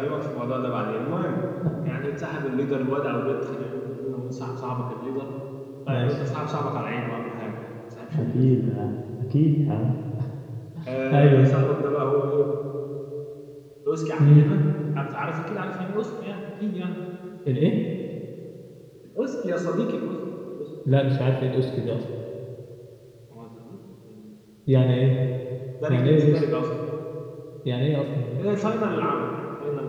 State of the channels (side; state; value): both; identical; correlation 1.00